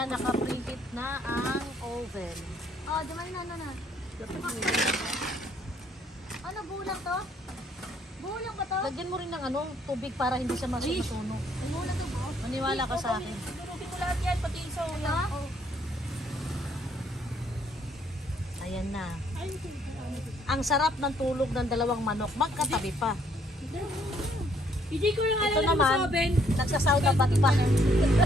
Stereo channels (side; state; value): both; normal; correlation 0.67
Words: naka-preheat na ang oven. Oh, di man na. Ano, bulang to? Bulang ba to? Lagyan mo rin ng ano, tubig para hindi siya masunog. Bulang to ba? Maniwala ka sa akin. Durugin mo lahat yan, pati yung sa ulam. Ito? Oh. Ayan na. Ang sarap ng tulog ng dalawang manok. Magkatabi pa. Hindi ko yung Ito alam mo naman, sa oven. nagsasauna ba't pa? Ano